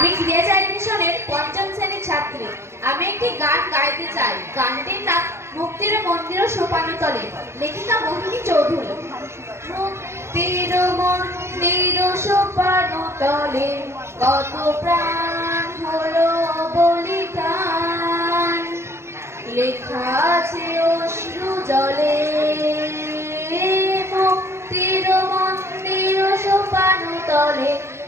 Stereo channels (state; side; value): late; left; 0.13 ms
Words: ক্রিয়াচারী মিশনের পঞ্চম শ্রেণীর ছাত্রী। আমি একটি গান গাইতে চাই। গানটির নাম মুক্তির মন্দির সোপানতলে, লেখিকা মোহিনী চৌধুরী। মুক্তির মন্দির সোপানতলে কত প্রাণ হলো বলিদান, লেখা আছে অশ্রু জলে। মুক্তির মন্দির সোপানতলে